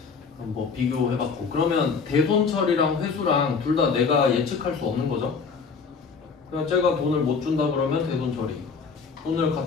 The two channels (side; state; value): right; quieter; 5.3 dB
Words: 뭐 비교해봤고, 그러면 대손 처리랑 회수랑 둘 다 내가 예측할 수 없는 거죠. 그냥 제가 돈을 못 준다 그러면 대손 처리, 돈을